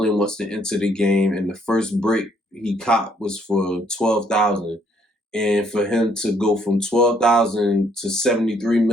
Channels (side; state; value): both; normal; correlation 0.68